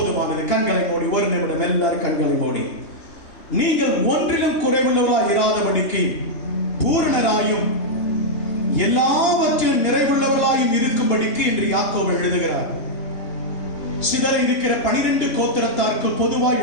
கண்களை மூடி ஒரு நிமிடம் எல்லாரும் கண்களை மூடி. நீங்கள் ஒன்றிலும் குறைவுள்ளவர்களாய் இராதபடிக்கு பூரணராயும் எல்லாவற்றிலும் நிறைவுள்ளவர்களாயும் இருக்கும்படிக்கு என்று யாக்கோபு எழுதுகிறார். சிதற இருக்கிற 12 கோத்திரத்தாருக்கு பொதுவாய்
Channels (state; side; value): late; right; 2.8 ms